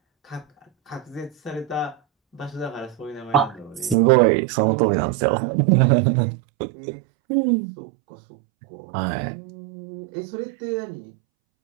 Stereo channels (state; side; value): drops out; left; at 4.0 s